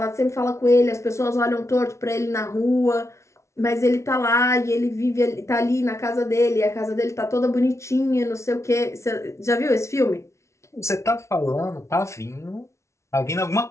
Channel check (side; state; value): right; late; 0.13 ms